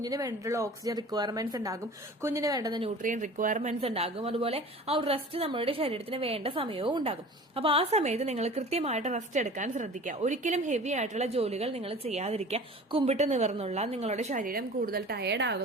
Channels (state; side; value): normal; both; correlation 0.41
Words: വേണ്ടിയിട്ടുള്ള ഓക്സിജൻ റിക്വയർമെന്റ്സ് ഉണ്ടാകും, കുഞ്ഞിന് വേണ്ടുന്ന ന്യൂട്രിയൻ റിക്വയർമെന്റ്സ് ഉണ്ടാകും, അതുപോലെ ആ ഒരു റെസ്റ്റ് നമ്മുടെ ശരീരത്തിന് വേണ്ട സമയവും ഉണ്ടാകും. അപ്പൊ ആ സമയത്ത് നിങ്ങൾ കൃത്യമായിട്ട് റെസ്റ്റ് എടുക്കാൻ ശ്രദ്ധിക്കുക. ഒരിക്കലും ഹെവി ആയിട്ടുള്ള ജോലികൾ നിങ്ങൾ ചെയ്യാതിരിക്കുക. കുമ്പിട്ട് നിവർന്നുള്ള നിങ്ങളുടെ ശരീരം കൂടുതൽ ടയേർഡ്